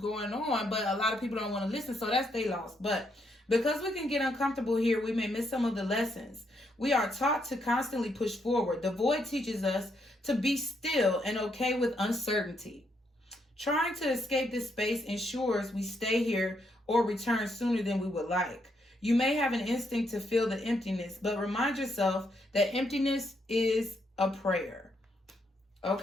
on, but a lot of people don't want to listen, so that's they loss. But because we can get uncomfortable here, we may miss some of the lessons. We are taught to constantly push forward. The void teaches us to be still and okay with uncertainty. Trying to escape this space ensures we stay here or return sooner than we would like. You may have an instinct to feel the emptiness, but remind yourself that emptiness is a prayer.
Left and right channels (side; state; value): both; normal; correlation 0.76